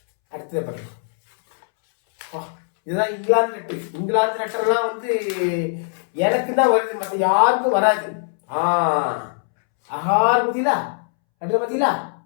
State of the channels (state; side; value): silent; right; 65 dB below the other